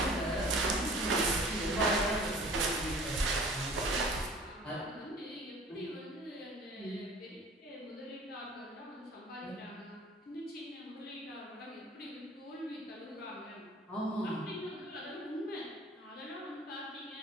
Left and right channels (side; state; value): both; normal; correlation 0.47